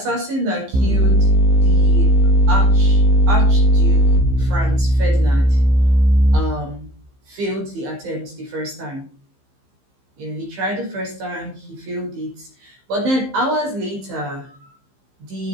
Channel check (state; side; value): late; left; 15 ms